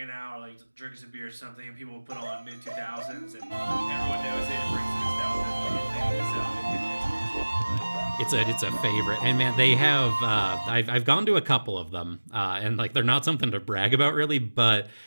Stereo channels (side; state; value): both; inverted; correlation -1.00